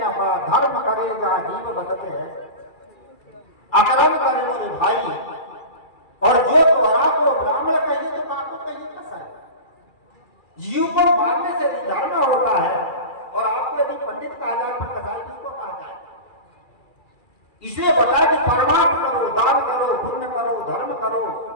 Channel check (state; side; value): late; right; 2.3 ms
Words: पड़ा, धर्म करे जहाँ जीव बदते हैं, अकर्म करे मोरे भाई, और जो तोहरा को ब्राह्मण कहिए तो काको कहिए कैसा है। जीव को मारने से धर्म होता है, और आपको यदि पंडित कहा जाए तो कसाई किसको कहा जाए। इसलिए बताया कि परमार्थ करो, दान करो, पुण्य करो, धर्म करो,